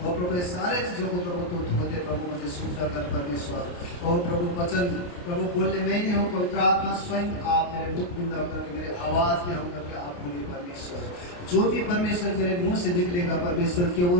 और प्रभु सारे चीज़ों को प्रभु तो धो दे प्रभु, मुझे शुद्ध कर परमेश्वर। और प्रभु वचन प्रभु बोलने में नहीं हो, पवित्र आत्मा स्वयं आप मेरे मुख बिंद होकर के मेरे आवाज़ में होकर के आप बोलिए परमेश्वर। जो भी परमेश्वर मेरे मुंह से निकलेगा परमेश्वर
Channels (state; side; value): late; right; 28 ms